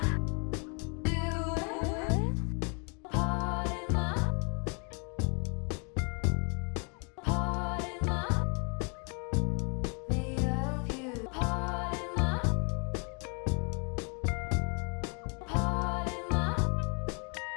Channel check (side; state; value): right; quieter; 35.5 dB